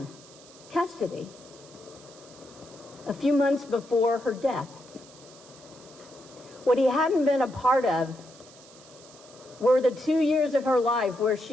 custody a few months before her death. What he hadn't been a part of were the 2 years of her life where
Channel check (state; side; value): noise; right; hiss, 22 dB below the sound